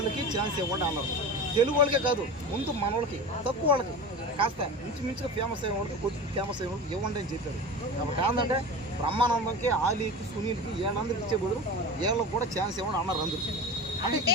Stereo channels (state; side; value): normal; both; correlation 0.30